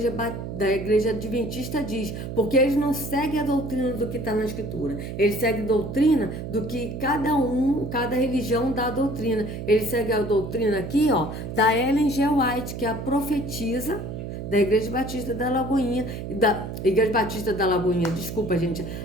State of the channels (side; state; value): right; noise; hum, 7 dB below the sound